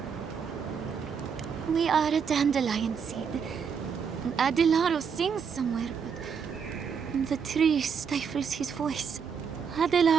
We are a dandelion seed. Adelaro sings somewhere, but the tree stifles his voice.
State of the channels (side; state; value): left; quieter; 6.6 dB